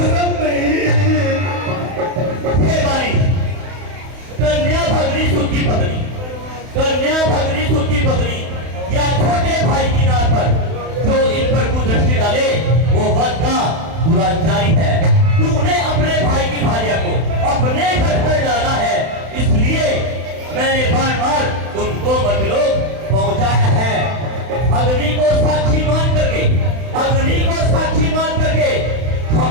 नहीं। हे बारी, कन्या भगनी सुखी पत्नी, कन्या भगनी सुखी पत्नी या छोटे भाई की नाथ पर जो इन पर कुदृष्टि डाले वो वध का दुराचारी है। तूने अपने भाई की भार्या को अपने घर पर डाला है, इसलिए मैंने बार बार तुमको मतलोक पहुंचाया है। अग्नि को साक्षी मान करके, अग्नि को साक्षी मान करके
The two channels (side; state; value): left; late; 31 ms